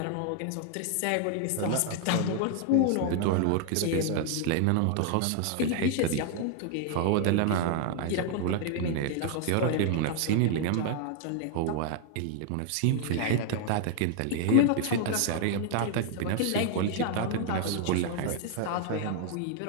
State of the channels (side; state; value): both; different; correlation 0.00